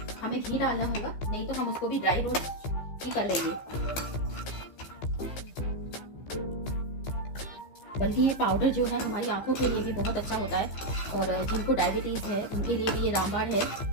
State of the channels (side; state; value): right; late; 15 ms